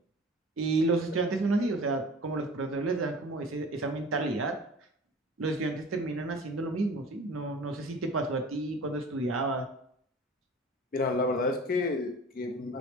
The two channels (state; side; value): normal; both; correlation 0.42